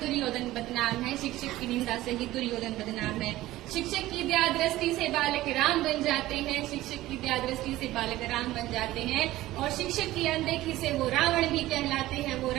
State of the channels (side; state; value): left; quieter; 16.3 dB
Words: बदनाम है, शिक्षक की निंदा से ही दुर्योधन बदनाम है। शिक्षक की दया दृष्टि से बालक राम बन जाते हैं, शिक्षक की दया दृष्टि से बालक राम बन जाते हैं, और शिक्षक की अनदेखी से वो रावण भी कहलाते हैं, वो